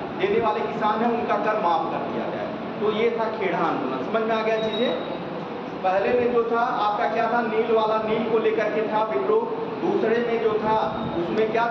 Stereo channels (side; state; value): both; identical; correlation 1.00